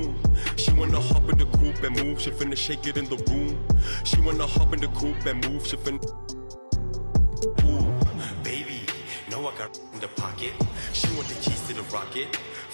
She wanna hop in the coupe and move. She finna shake it in the room. She wanna hop in the coupe and move. She finna. Ooh, baby, know I got in the pocket. She want the keys to the rocket.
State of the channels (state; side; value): inverted; both; correlation -1.00